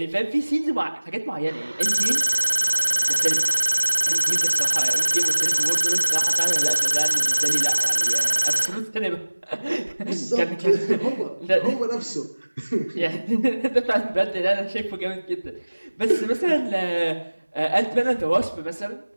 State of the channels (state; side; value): inverted; both; correlation -1.00